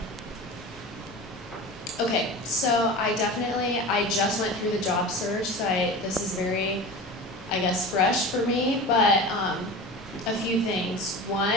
Okay, so I just went through the job search, so this is very, I guess, fresh for me, but a few things. One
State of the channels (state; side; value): normal; both; correlation 0.32